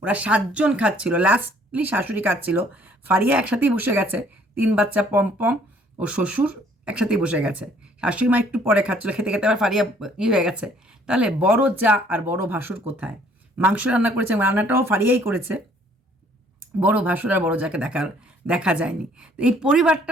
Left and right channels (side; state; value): both; normal; correlation 0.61